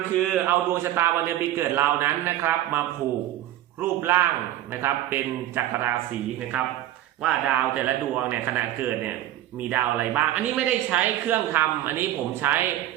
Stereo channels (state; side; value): quieter; left; 13.5 dB